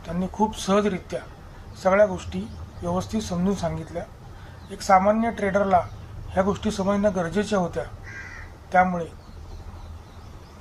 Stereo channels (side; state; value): both; identical; correlation 1.00